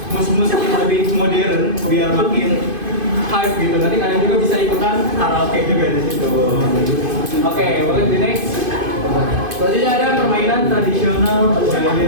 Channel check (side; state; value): left; late; 2.5 ms